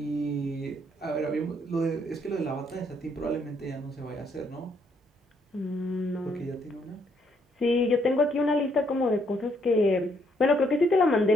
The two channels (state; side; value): normal; both; correlation 0.71